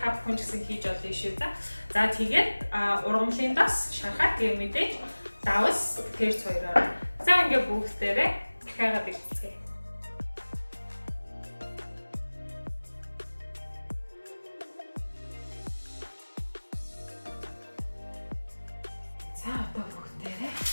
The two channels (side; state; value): both; inverted; correlation -1.00